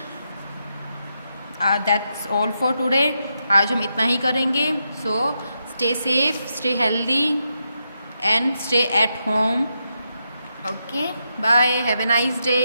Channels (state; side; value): inverted; both; correlation -0.84